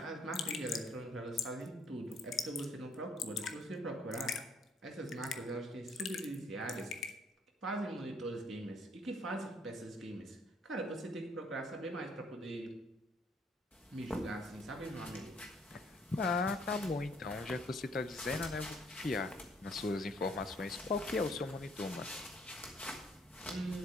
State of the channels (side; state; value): both; normal; correlation 0.64